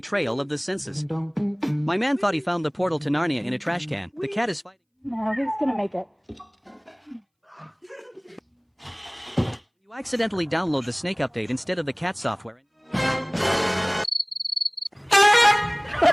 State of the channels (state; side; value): identical; both; correlation 1.00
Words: of the senses. My man thought he found the portal to Narnia in a trash can. The cat is fighting. No, he's gonna make it. You accidentally download the Snake update instead of the cat software.